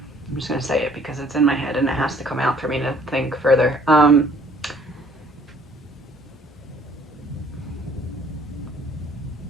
just going to say it because it's in my head and it has to come out for me to think further.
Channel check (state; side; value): normal; both; correlation 0.58